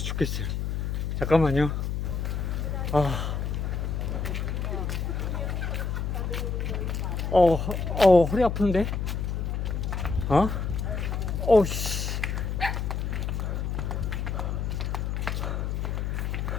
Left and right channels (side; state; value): left; noise; hum, 1 dB below the sound